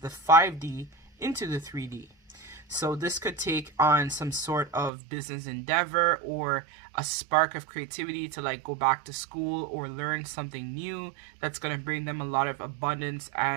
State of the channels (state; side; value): drops out; left; at 4.9 s